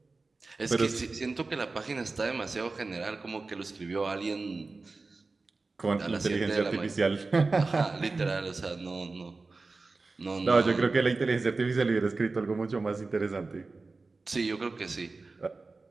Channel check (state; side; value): quieter; left; 3.7 dB